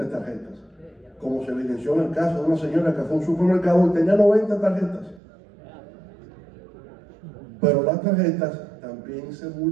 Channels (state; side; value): drops out; left; at 5.2 s